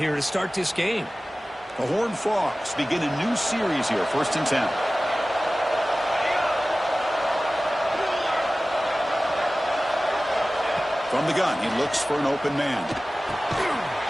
to start this game. The Horned Frogs begin a new series here, first and 10. From the gun, he looks for an open man.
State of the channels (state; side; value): normal; both; correlation 0.97